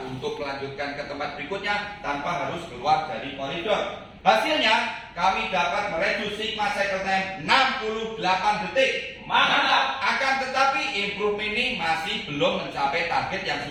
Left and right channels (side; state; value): both; identical; correlation 1.00